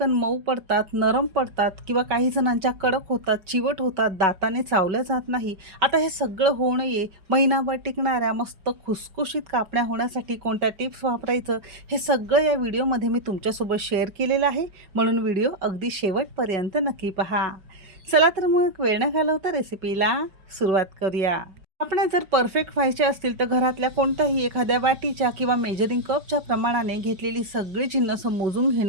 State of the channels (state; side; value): late; left; 5.3 ms